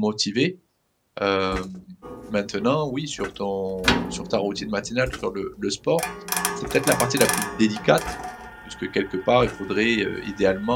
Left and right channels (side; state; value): both; identical; correlation 1.00